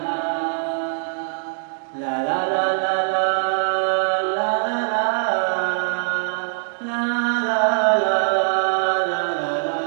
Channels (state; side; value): silent; left; digital silence